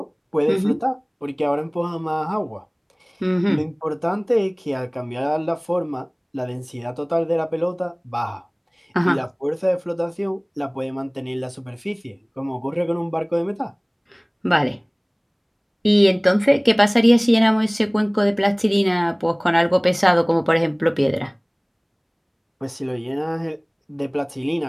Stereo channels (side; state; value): both; identical; correlation 1.00